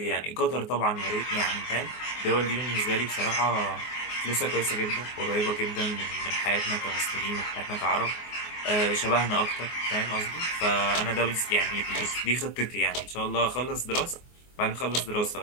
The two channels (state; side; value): late; right; 24 ms